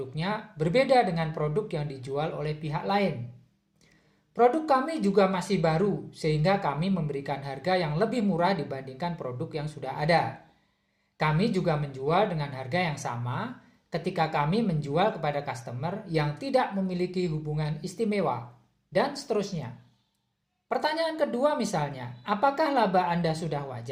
berbeda dengan produk yang dijual oleh pihak lain. Produk kami juga masih baru sehingga kami memberikan harga yang lebih murah dibandingkan produk yang sudah ada. Kami juga menjual dengan harga yang sama ketika kami menjual kepada customer yang tidak memiliki hubungan istimewa, dan seterusnya. Pertanyaan kedua misalnya, apakah laba Anda sudah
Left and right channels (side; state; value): both; identical; correlation 1.00